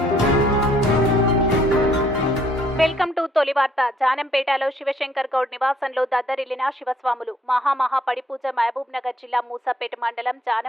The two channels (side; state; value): both; normal; correlation 0.65